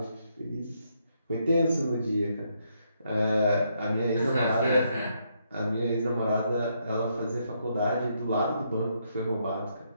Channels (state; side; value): inverted; both; correlation -0.76